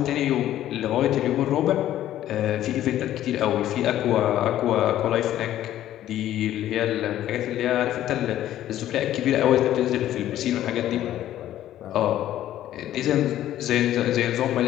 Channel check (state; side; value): quieter; right; 12.7 dB